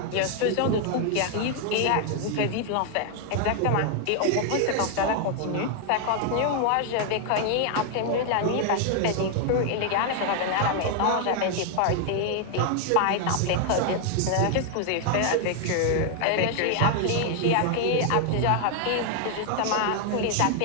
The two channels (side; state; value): both; different; correlation 0.00